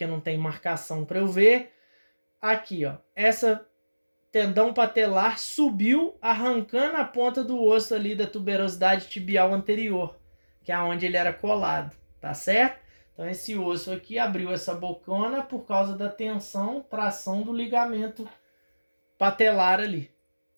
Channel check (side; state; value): both; inverted; correlation -1.00